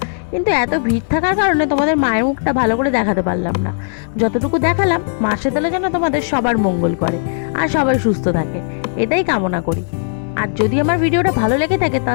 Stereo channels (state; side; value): silent; right; digital silence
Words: কিন্তু এত ভিড় থাকার কারণে তোমাদের মায়ের মুখটা ভালো করে দেখাতে পারলাম না। যতটুকু দেখালাম, মা শীতলা যেন তোমাদের সবার মঙ্গল করে আর সবাই সুস্থ থাকে, এটাই কামনা করি। আর যদি আমার ভিডিওটা ভালো লেগে থাকে